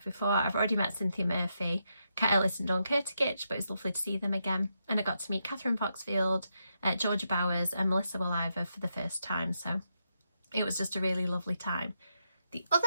before. I've already met Cynthia Murphy, Kat Ellis and Dawn Kurtigich, but it was lovely to see them again. And I got to meet Catherine Foxfield, Georgia Bowers and Melissa Williver for the first time, so it was just a really lovely time. The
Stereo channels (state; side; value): inverted; both; correlation -0.82